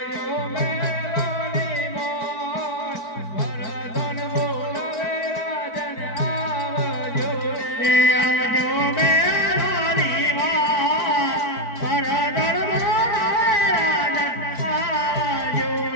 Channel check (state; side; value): late; right; 4.5 ms